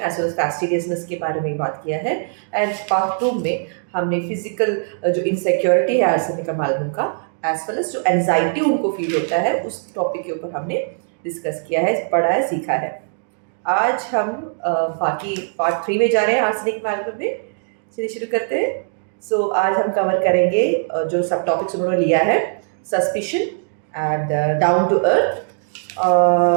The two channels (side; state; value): left; silent; digital silence